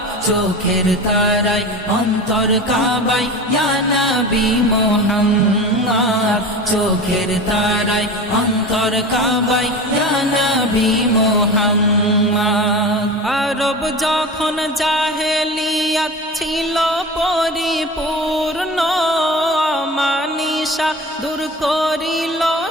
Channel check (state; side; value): normal; both; correlation 0.32